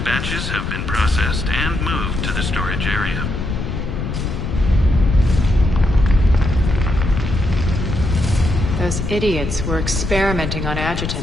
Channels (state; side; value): noise; left; rumble, 4 dB below the sound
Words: have been processed and moved to the storage area. Those idiots were experimenting on